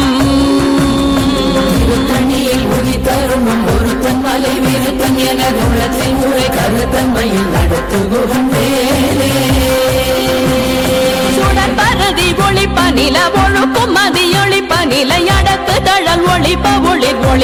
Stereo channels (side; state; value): both; identical; correlation 1.00